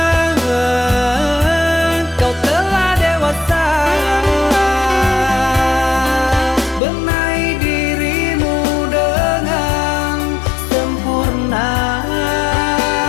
Kau telah dewasa, benahi dirimu dengan sempurna.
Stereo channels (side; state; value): right; drops out; at 6.8 s